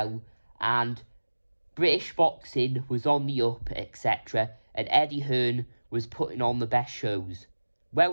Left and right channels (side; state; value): both; inverted; correlation -1.00